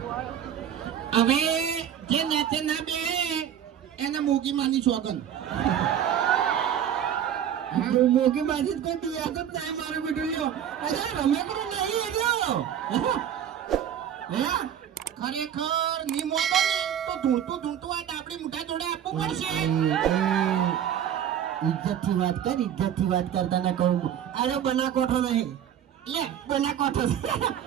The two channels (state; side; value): quieter; left; 9.7 dB